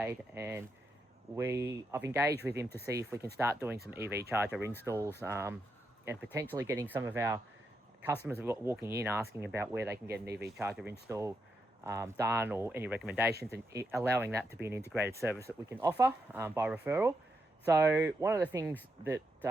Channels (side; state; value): both; normal; correlation 0.83